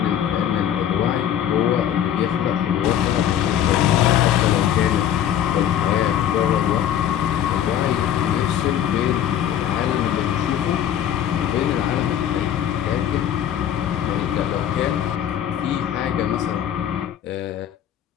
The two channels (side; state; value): right; quieter; 10.3 dB